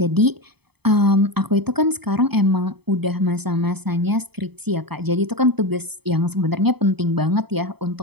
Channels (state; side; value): late; left; 0.97 ms